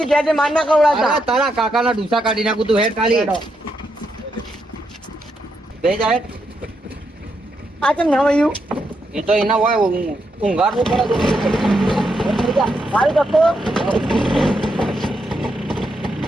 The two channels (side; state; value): both; normal; correlation 0.81